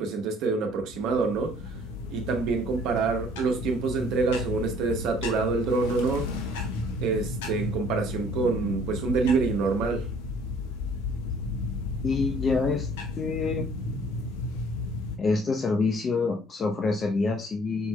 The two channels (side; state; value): both; normal; correlation 0.56